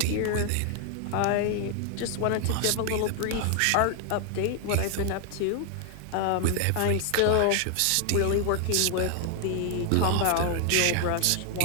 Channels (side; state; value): both; different; correlation 0.00